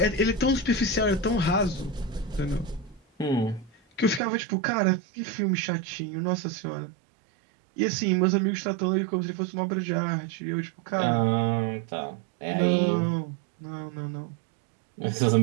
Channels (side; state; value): left; drops out; at 4.2 s